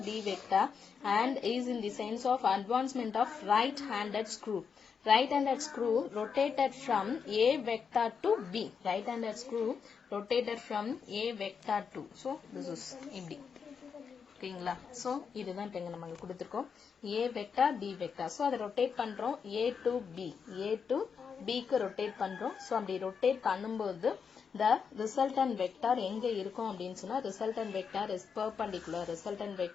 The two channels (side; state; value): right; quieter; 6.3 dB